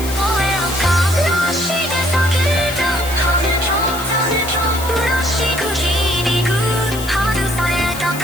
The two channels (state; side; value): noise; left; hiss, 11 dB below the sound